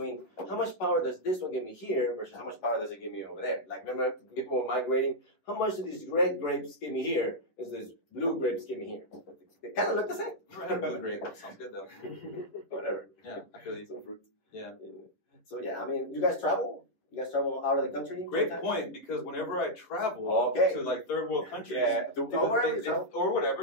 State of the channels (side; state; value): right; late; 10 ms